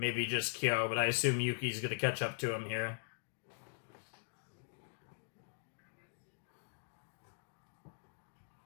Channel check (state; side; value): silent; right; digital silence